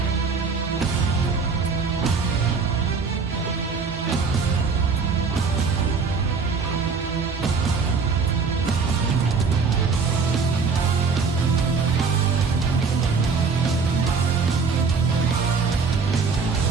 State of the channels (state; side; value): quieter; left; 4.9 dB